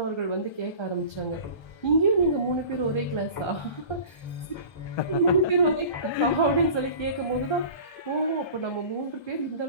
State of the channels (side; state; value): right; late; 1.3 ms